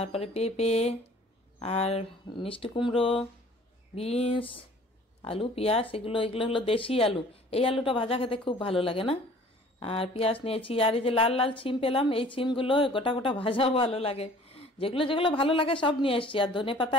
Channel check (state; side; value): normal; both; correlation 0.51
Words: পেঁপে আর মিষ্টি কুমড়ো, বিনস, আলু, পেঁয়াজ। এগুলো হলো দেশি আলু। এই আলুটা ভাজা খেতে খুব ভালো লাগে না? আর পেঁয়াজ নিয়েছি। আর এই যে লাল লাল ছিম পেলাম, এই ছিমগুলো গোটা গোটা ভাজাও ভালো লাগে। যেগুলো যেগুলো ভালো লাগে সব নিয়ে এসছি। আর ধনে পাতা